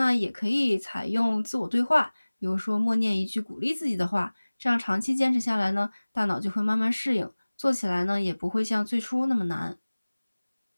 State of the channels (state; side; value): inverted; both; correlation -1.00